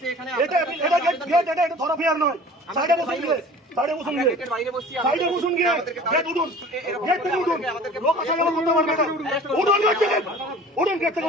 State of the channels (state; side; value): normal; both; correlation 0.44